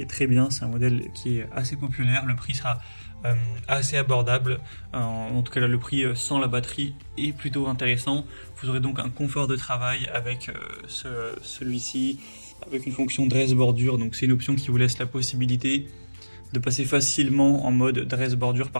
très bien. C'est un modèle qui est assez populaire, le prix sera assez abordable, en tout cas là, le prix sans la batterie est plutôt intéressant. Vous aurez donc un confort de travail avec celui-ci, avec une fonction dress bordure, donc c'est une option qui vous laisse la possibilité de passer facilement en mode dress bordure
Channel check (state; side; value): inverted; both; correlation -1.00